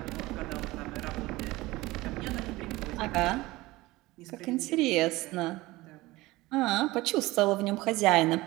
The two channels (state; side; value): quieter; left; 19.7 dB